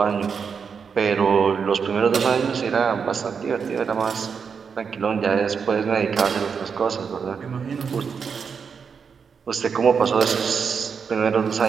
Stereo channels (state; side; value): quieter; left; 6.2 dB